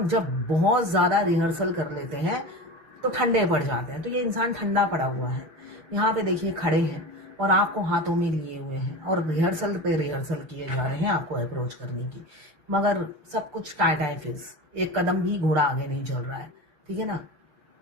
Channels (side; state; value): left; late; 6.6 ms